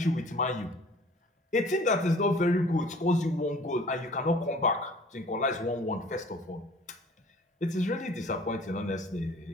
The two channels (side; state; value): both; normal; correlation 0.49